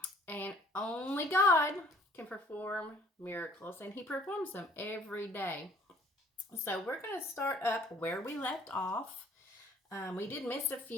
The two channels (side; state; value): both; normal; correlation 0.57